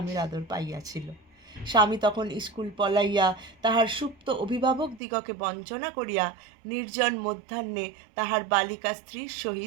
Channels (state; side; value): drops out; left; at 5.0 s